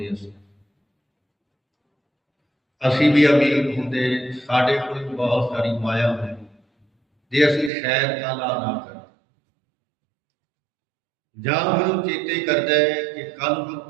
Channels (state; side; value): drops out; left; at 7.7 s